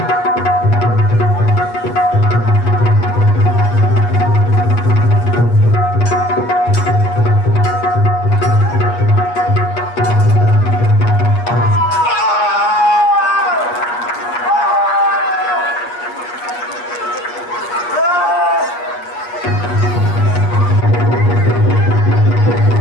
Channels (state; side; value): late; right; 8.4 ms